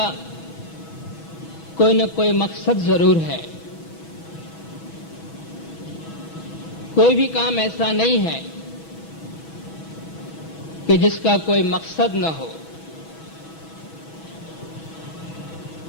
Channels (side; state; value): right; late; 6.2 ms